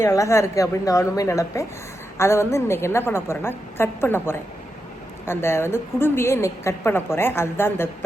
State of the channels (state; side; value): normal; both; correlation 0.87